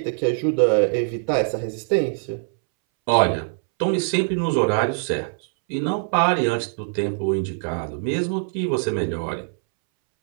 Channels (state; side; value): silent; left; 64 dB below the other